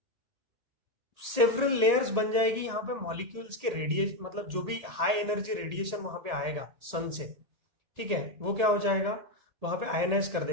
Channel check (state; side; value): late; left; 1.8 ms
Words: सेवरल लेयर्स बन जाएगी यहाँ पे मॉलिक्यूल्स के रेडिएशन, मतलब जो भी हाई एनर्जी रेडिएशन वहां पे आएगा सन से, ठीक है, वो क्या हो जाएगा, वहां पे आयनाइज कर